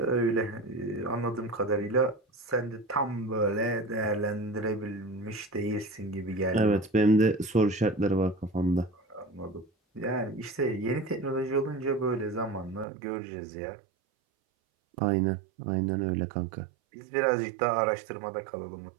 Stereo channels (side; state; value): left; drops out; at 12.9 s